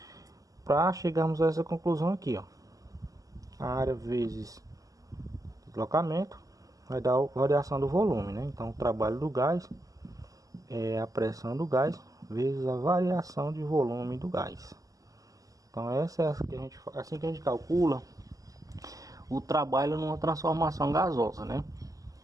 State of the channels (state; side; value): late; left; 0.17 ms